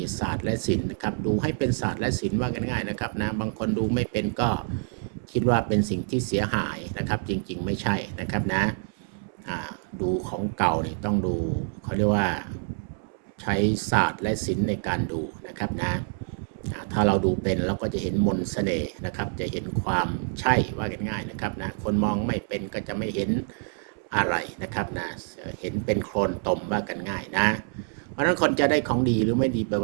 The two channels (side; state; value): left; silent; 60 dB below the other